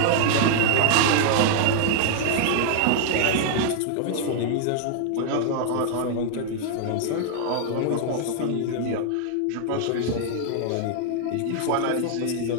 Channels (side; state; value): both; different; correlation 0.00